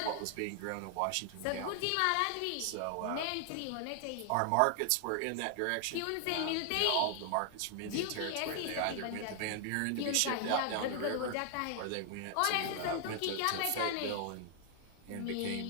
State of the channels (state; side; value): different; both; correlation 0.00